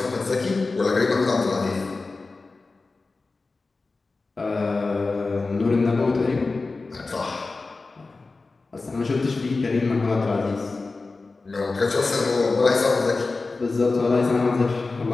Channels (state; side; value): quieter; right; 3.7 dB